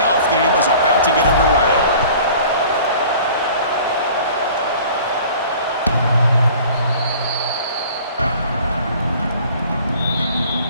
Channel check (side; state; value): both; inverted; correlation -0.47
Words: game is about to get underway.